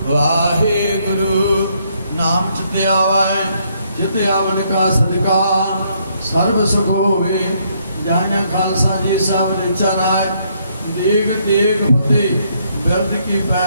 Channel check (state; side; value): inverted; both; correlation -0.71